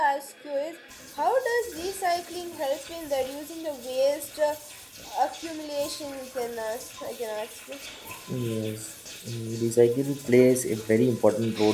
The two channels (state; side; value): identical; both; correlation 1.00